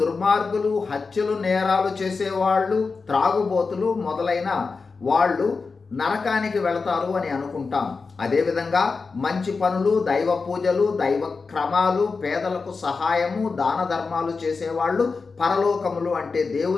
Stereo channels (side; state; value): right; quieter; 4.5 dB